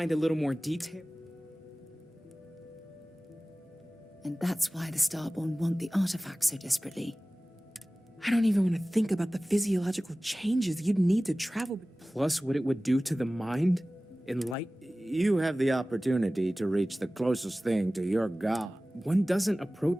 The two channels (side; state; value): both; normal; correlation 0.98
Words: a little more detail. And that's why the Starborn want the artifact so desperately. I don't even want to think about the physiological changes you'd need to travel. Plus what it would do to the mind? You have the opportunity to reach the closest thing to your god. One doesn't